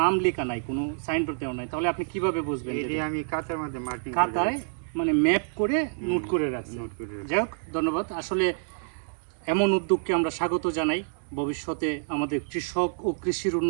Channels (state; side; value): silent; left; digital silence